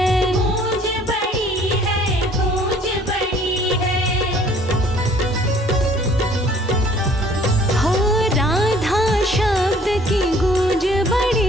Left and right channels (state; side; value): normal; both; correlation 0.56